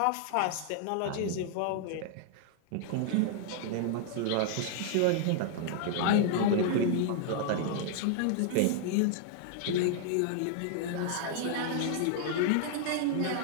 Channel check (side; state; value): both; different; correlation -0.01